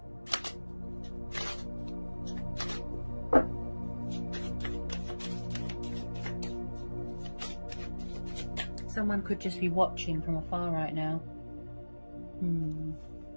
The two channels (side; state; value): both; inverted; correlation -1.00